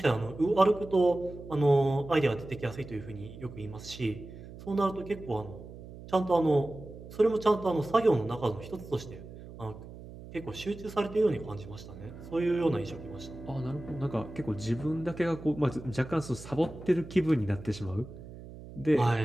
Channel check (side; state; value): right; noise; hum, 15 dB below the sound